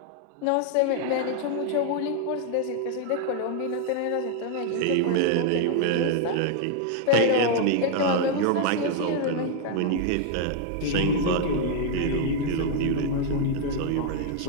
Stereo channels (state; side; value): different; both; correlation 0.00